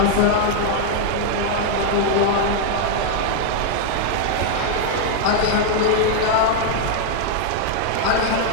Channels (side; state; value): both; different; correlation 0.00